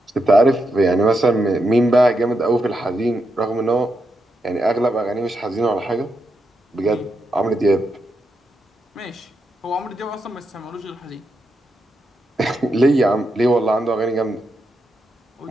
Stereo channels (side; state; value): both; normal; correlation 0.84